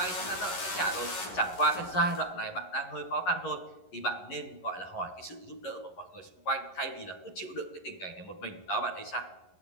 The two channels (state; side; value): late; right; 11 ms